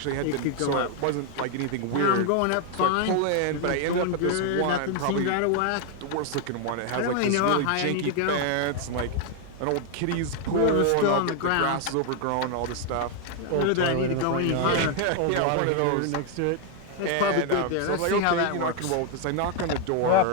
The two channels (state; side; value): different; both; correlation 0.01